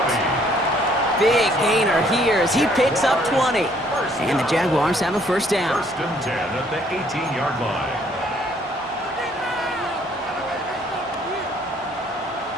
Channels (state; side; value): normal; both; correlation 0.63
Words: Big gainer here as he picks up 20. And the Jaguars have a first down. 1st and 10 at the 18-yard line.